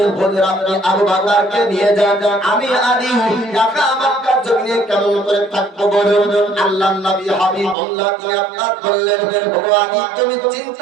আপনি আবু বকরকে নিয়ে যান, আমি আলী একা মক্কার জমিনে কেমন করে থাকবো বলুন। আল্লাহর নবী হাবিবুল্লাহ তিনি আপনার বললেন, ও আলী তুমি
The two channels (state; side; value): drops out; left; at 7.8 s